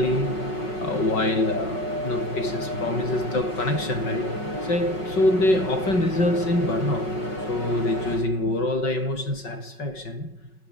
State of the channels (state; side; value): late; right; 5.4 ms